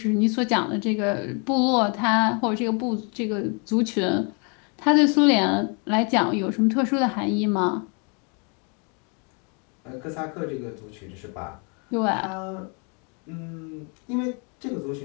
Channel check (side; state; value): right; quieter; 35.4 dB